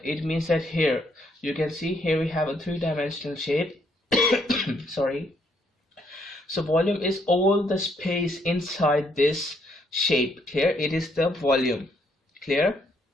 It means that here you can see here we have a three-dimensional shape. Sorry. So volume is all the space inside this shape. Clear? It is the volume. Clear?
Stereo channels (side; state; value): both; normal; correlation 0.71